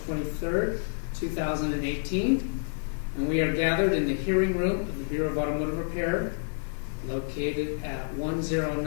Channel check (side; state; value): right; silent; 59 dB below the other